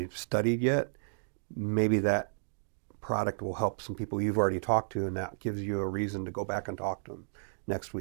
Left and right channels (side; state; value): left; silent; digital silence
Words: studied yet, maybe that product will help some people you've already talked to, and that gives you a reason to go back and talk to them next